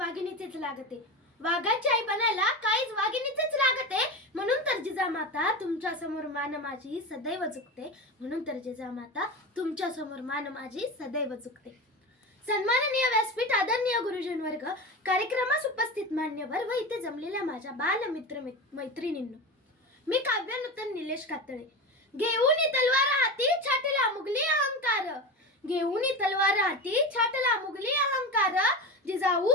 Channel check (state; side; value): normal; both; correlation 0.24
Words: वाघिणीचेच लागते. वाघाची आई बनायला काहीच वाघिणीचेच लागते. म्हणून तर जिजामाता तुमच्या समोर मान माझी सदैव झुकते. म्हणून तर जिजामाता तुमच्या समोर मान माझी सदैव झुकते. सन्माननीय व्यासपीठ, आदरणीय गुरुजन वर्ग, कार्यक्रमास उपस्थित मान्यवर व इथे जमलेल्या माझ्या बालमित्र मैत्रिणींनो, मी काव्य नूतन निलेश कातळे. घेऊन तलवार हाती छाटला मुघली अहंकार. घेऊन तलवार हाती छाटला मुघली अहंकार. जिजाऊ